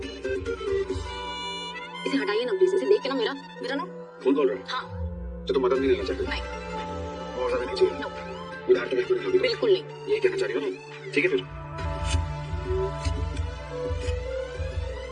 इसे हटाइए ना प्लीज, इसे देख के ना मेरा ना। कौन बोल रहा है? हाँ। तो तुम मदद नहीं लेना चाहते? नहीं। और ज्यादा नहीं चाहिए? नो। उधार तो बिल्कुल नहीं। बिल्कुल नहीं। ये कहना चाह रही हो ना? ठीक है फिर।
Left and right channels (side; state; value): both; identical; correlation 1.00